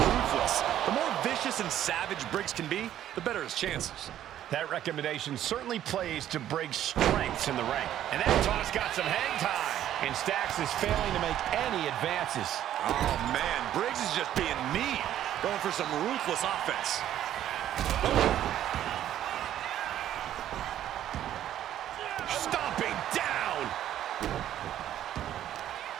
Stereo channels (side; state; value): left; quieter; 11.6 dB